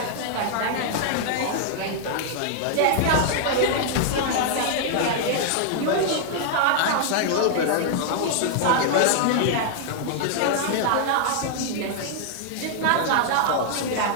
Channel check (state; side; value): different; both; correlation 0.00